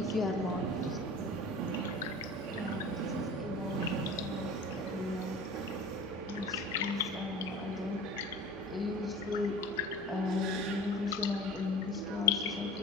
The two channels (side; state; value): both; normal; correlation 0.38